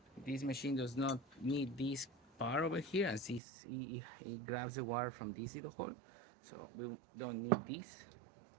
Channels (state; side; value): drops out; left; at 3.4 s